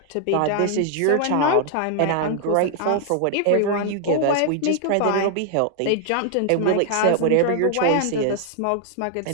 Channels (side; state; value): both; different; correlation 0.00